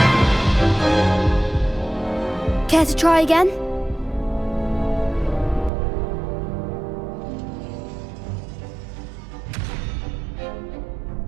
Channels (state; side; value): drops out; left; at 5.7 s